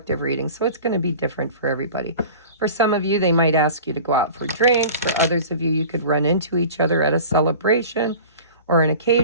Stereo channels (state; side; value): inverted; both; correlation -0.40